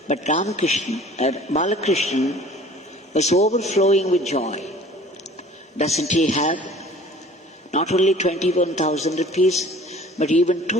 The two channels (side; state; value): both; normal; correlation 0.47